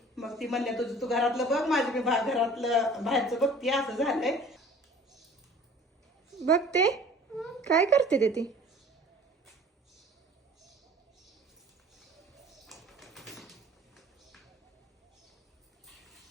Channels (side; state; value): both; normal; correlation 0.47